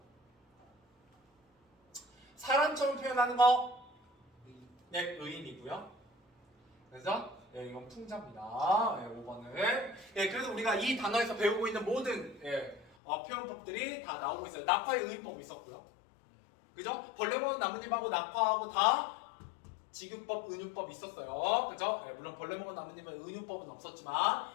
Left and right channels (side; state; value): right; drops out; at 12.9 s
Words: 사람처럼 표현하는 거 의인이고요. 그래서 이건 풍자입니다. 5번은 그래서 우리가 이 단어에서 배우고 있는 모든 표현법들이 다 나오고 있어요. 낙화의 의인법 있었고요. 그죠? 벌레 먹은 나뭇잎하고 낙화하고 다 지구법, 은유법 있었어요. 그죠? 예, 물론 벌레 먹은 나뭇잎은 은유법은 없었지만